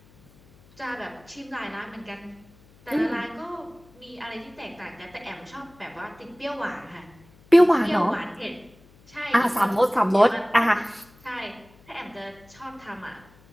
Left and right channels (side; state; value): left; noise; hum, 27 dB below the sound